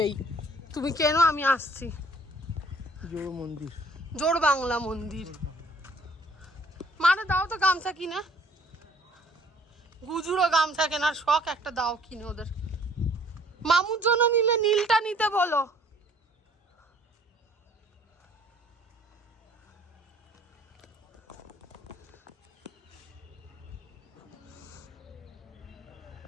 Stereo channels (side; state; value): both; normal; correlation 0.58